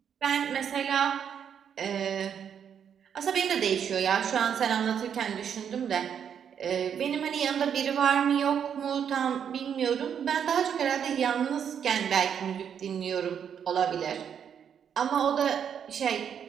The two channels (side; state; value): left; quieter; 8.1 dB